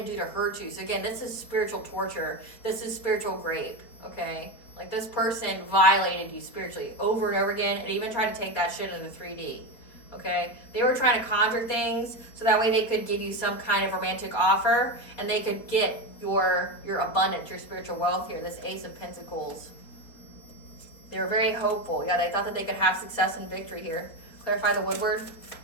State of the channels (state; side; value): late; right; 4.3 ms